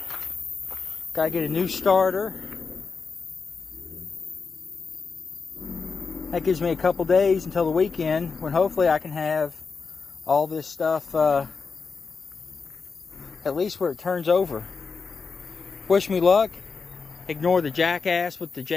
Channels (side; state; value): right; quieter; 4.9 dB